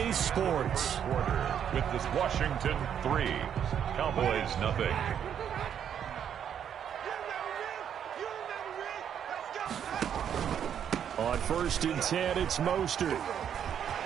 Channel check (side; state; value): left; quieter; 8.8 dB